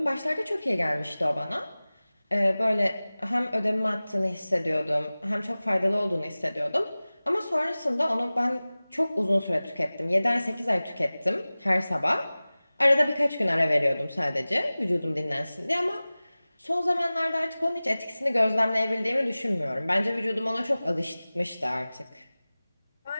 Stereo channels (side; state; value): both; inverted; correlation -0.98